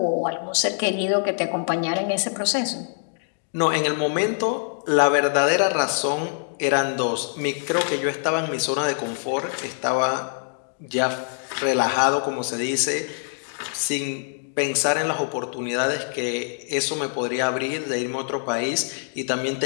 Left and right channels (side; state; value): right; silent; digital silence